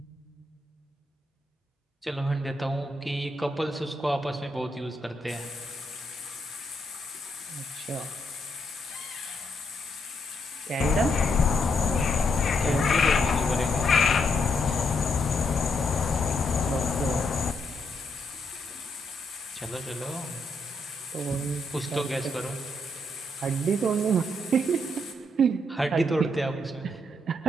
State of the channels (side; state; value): both; normal; correlation 0.77